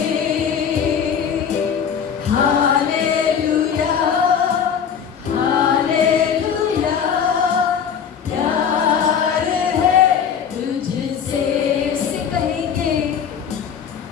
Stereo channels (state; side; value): quieter; right; 7.6 dB